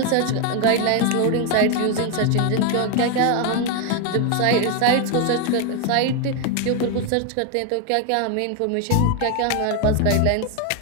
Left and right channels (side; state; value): both; different; correlation 0.01